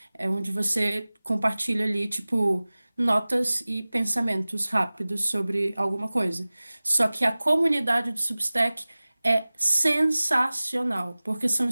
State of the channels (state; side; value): inverted; both; correlation -0.99